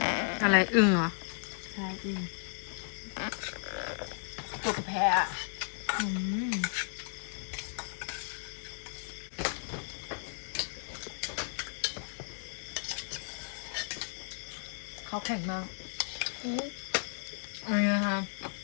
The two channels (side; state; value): right; silent; 55 dB below the other